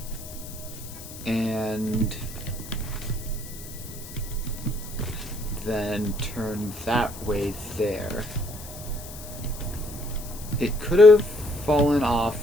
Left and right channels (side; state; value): left; noise; hiss, 15 dB below the sound